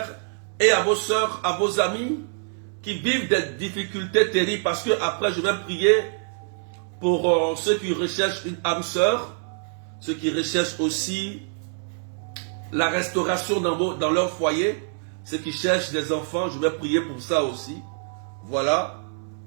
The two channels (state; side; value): silent; left; digital silence